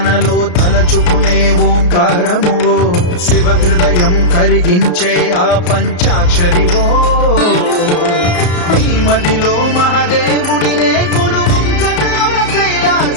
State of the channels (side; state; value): right; late; 33 ms